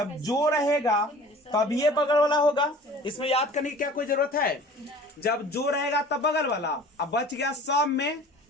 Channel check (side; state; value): both; normal; correlation 0.45